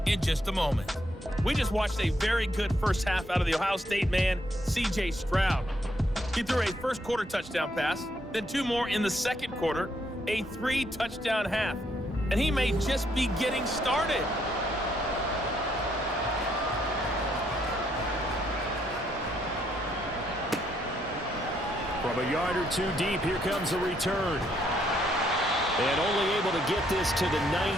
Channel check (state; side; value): normal; both; correlation 0.73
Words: in just a moment. We just watched a very good first half out of the Ohio State man, C.J. Stroud. He threw a first quarter touchdown pass, then 2 more in the second quarter, a 3-touchdown half. And he may just be getting started. From a yard or 2 deep, here comes the return. And only able to get this to the